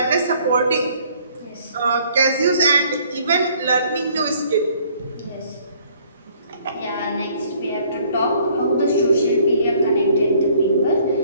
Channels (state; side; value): inverted; both; correlation -0.60